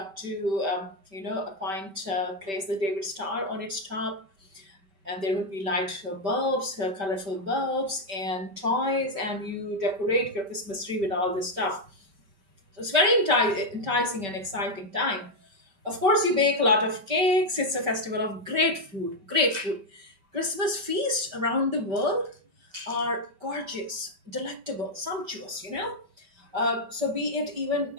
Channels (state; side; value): late; left; 5.1 ms